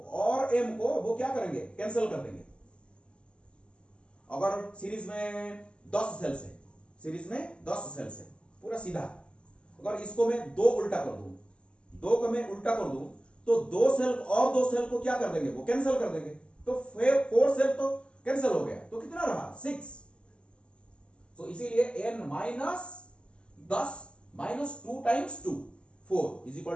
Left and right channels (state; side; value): late; right; 0.053 ms